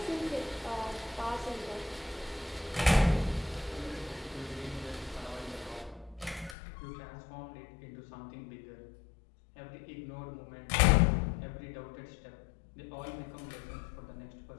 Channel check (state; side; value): drops out; right; at 6.6 s